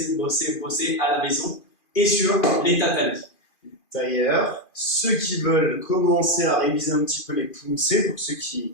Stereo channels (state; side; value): late; right; 2.5 ms